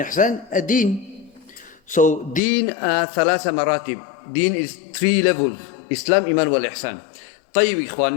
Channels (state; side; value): drops out; right; at 2.4 s